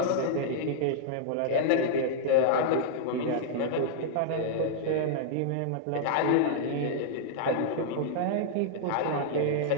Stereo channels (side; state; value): both; different; correlation -0.02